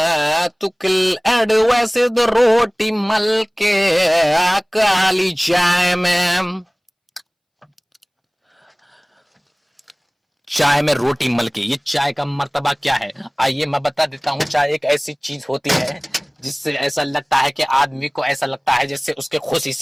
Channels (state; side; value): identical; both; correlation 1.00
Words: रोटी मल के काली चाय में रोटी मल के, ये चाय का मर्तबा क्या है आइए मैं बता देता हूँ। चाय एक ऐसी चीज होती है जिससे ऐसा लगता है कि आदमी को ऐसा लगता है जैसे उसके खुशी